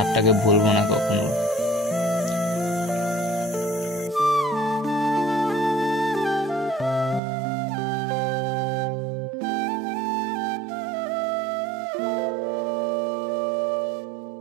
ভুলবো না কখনো।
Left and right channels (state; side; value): drops out; left; at 7.2 s